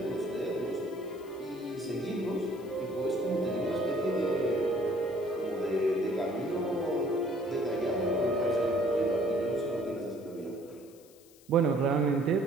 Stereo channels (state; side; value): noise; left; hiss, 26 dB below the sound